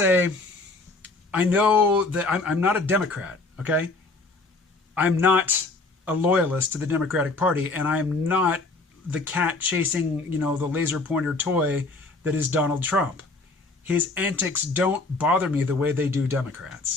I know that I'm not a Democrat, okay? I'm not a loyalist to the Democratic Party, and I'm not the cat chasing, the laser pointer toy that is Donald Trump. His antics don't bother me the way they do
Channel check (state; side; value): quieter; right; 3.4 dB